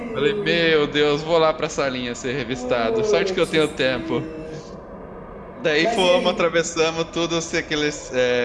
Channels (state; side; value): identical; both; correlation 1.00